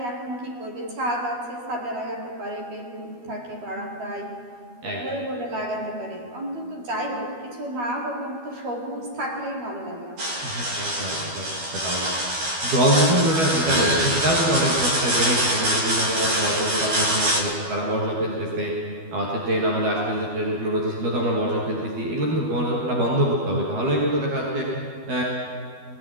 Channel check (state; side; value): late; left; 12 ms